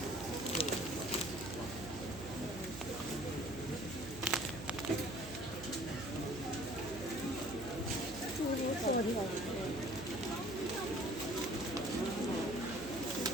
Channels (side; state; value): right; noise; hum, 12 dB below the sound